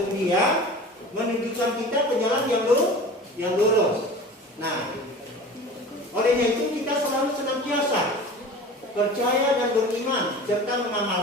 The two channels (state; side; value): normal; both; correlation 0.38